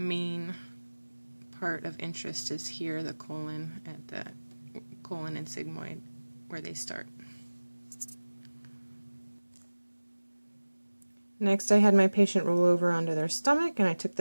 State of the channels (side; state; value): both; inverted; correlation -1.00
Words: part of interest is here, the colon, at the colon and sigmoid where they start. Next, I had my patient roll over onto their stomach, and I took